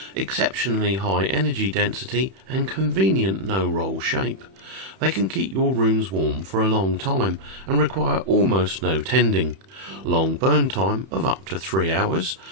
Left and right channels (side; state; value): left; late; 31 ms